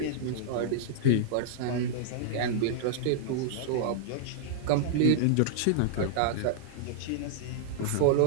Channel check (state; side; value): different; both; correlation -0.02